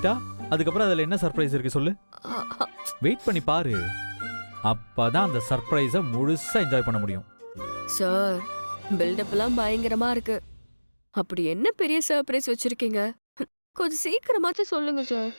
அதுக்கப்புறம் அதுல என்ன சர்ப்ரைஸ் இருக்கு சொல்லு. வெயிட் பண்ணி பாரு, அப்பதான் அந்த சர்ப்ரைஸை முழுசா என்ஜாய் பண்ண முடியும். சார், பில்டப் எல்லாம் பயங்கரமா இருக்கு. அப்படி என்ன பெரிய சர்ப்ரைஸ் வச்சிருக்கீங்க? கொஞ்சம் சீக்கிரமாச்சும் சொல்லுங்க சார்,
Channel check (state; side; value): inverted; both; correlation -1.00